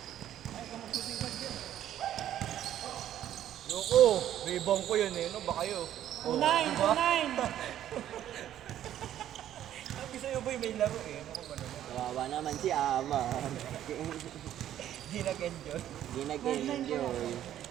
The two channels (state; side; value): quieter; left; 11.6 dB